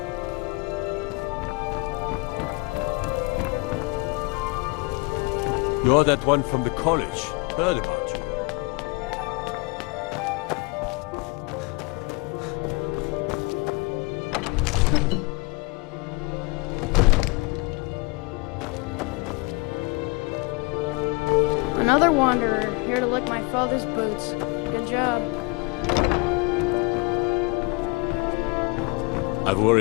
You're that one from the college. Heard about you. Another wanderer, here to lick my father's boots. Good job. I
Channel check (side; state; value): right; quieter; 28.2 dB